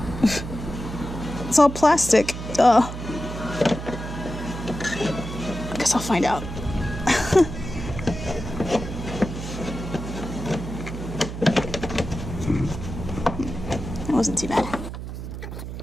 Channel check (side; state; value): right; noise; hum, 8 dB below the sound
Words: It's all plastic. Duh. I guess I'll find out. That wasn't too bad.